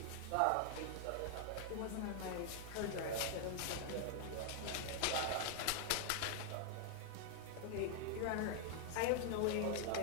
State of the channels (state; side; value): different; both; correlation 0.00